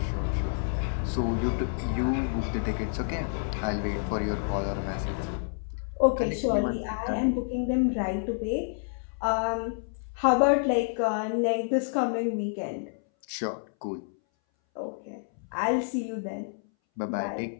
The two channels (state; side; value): silent; right; 59 dB below the other